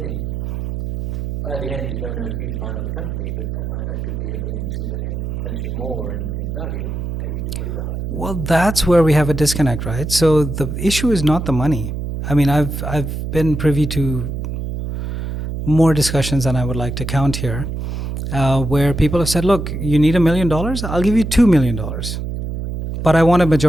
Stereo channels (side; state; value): right; noise; hum, 4 dB below the sound